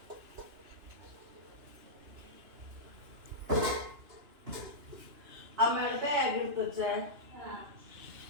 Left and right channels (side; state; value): left; late; 2.9 ms